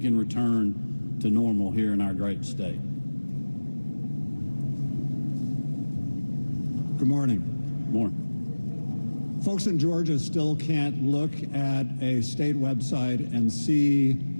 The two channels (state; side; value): inverted; both; correlation -1.00